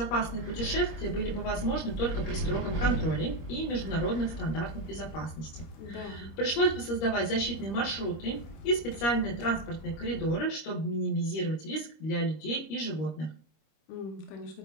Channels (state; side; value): late; right; 25 ms